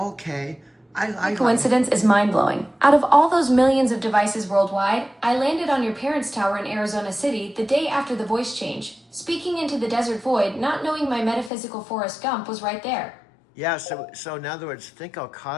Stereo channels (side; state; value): right; drops out; at 11.5 s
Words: The coincidence is mind-blowing. Out of all those millions of devices worldwide, I landed on your parents' tower in Arizona City the day after the voice change, speaking into the desert void, not knowing my metaphysical Forrest Gump was right there. Yeah, so in other words, think how